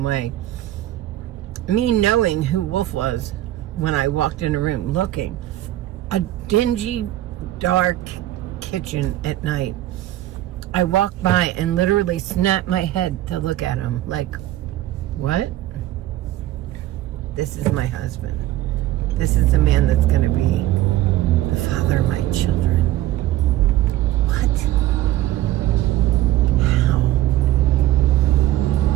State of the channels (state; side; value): quieter; left; 14.6 dB